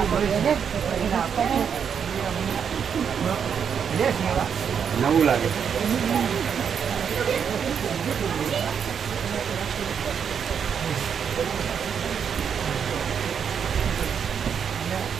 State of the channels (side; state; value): left; quieter; 7.3 dB